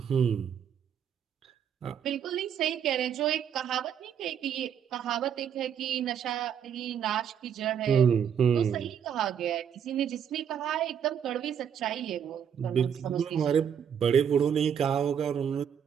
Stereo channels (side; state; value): left; quieter; 8.3 dB